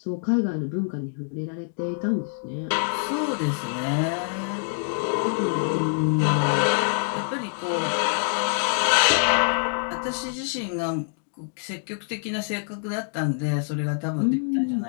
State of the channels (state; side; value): silent; right; digital silence